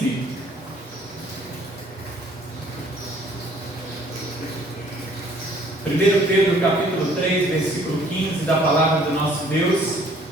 Primeiro Pedro, capítulo 3, versículo 15, da palavra do nosso Deus.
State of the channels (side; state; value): both; normal; correlation 0.58